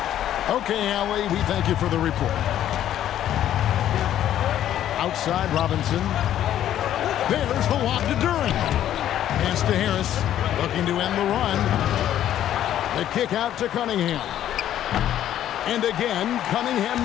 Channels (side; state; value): right; quieter; 11.5 dB